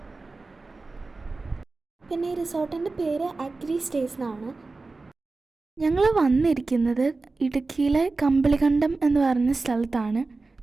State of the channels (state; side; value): quieter; left; 3.6 dB